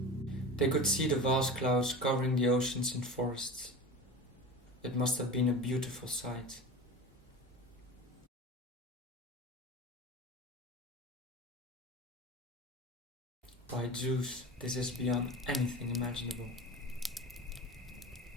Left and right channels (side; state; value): both; normal; correlation 0.32